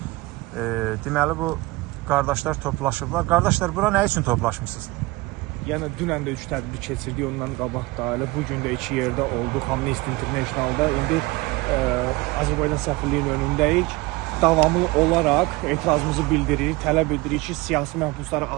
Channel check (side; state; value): left; quieter; 22.0 dB